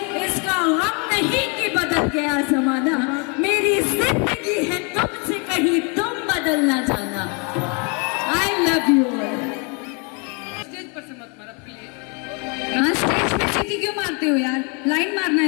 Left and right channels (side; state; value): right; quieter; 34.3 dB